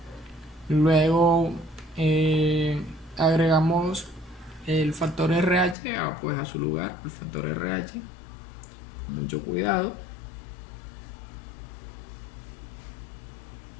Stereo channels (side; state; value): right; drops out; at 5.8 s